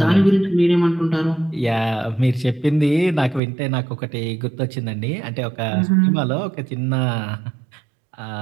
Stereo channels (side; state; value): left; drops out; at 3.4 s